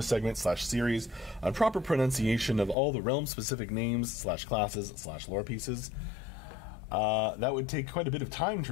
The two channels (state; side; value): drops out; right; at 2.8 s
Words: / series on proper pronunciation of all the realm-specific names / classes / lore pieces? That would take quite a bit of time,